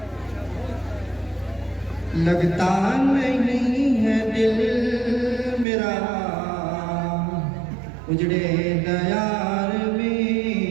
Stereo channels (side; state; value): left; drops out; at 5.7 s